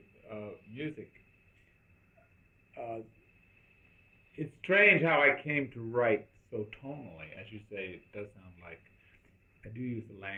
music. Uh, it's strange how I came to write so tonally, as you say. It does sound like I do use the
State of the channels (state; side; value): identical; both; correlation 1.00